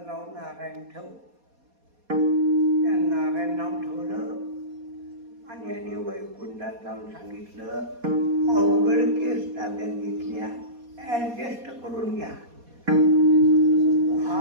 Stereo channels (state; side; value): late; left; 4.2 ms